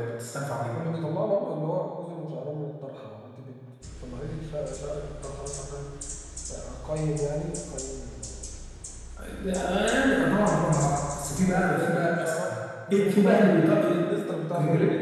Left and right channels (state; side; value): identical; both; correlation 1.00